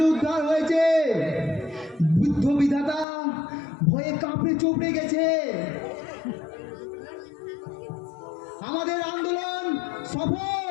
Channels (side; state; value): right; drops out; at 3.1 s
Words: উদ্ধার হয়েছে। বুদ্ধ বিধাতা ভয়ে কাঁপড়ে চোপড়ে গেছে। আমাদের আন্দোলন